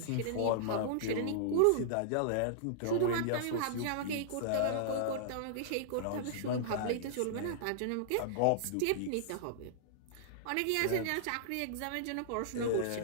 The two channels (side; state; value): both; different; correlation -0.02